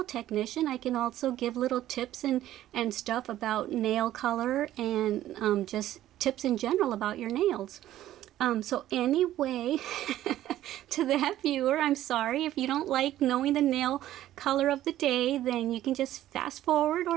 technician, I can also give little tips and stuff about nail color and just tips in general about your nails. So anyway, to that viewer, I'm sorry. If you don't like knowing the nail color of the day, then you can just fast forward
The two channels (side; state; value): left; quieter; 13.4 dB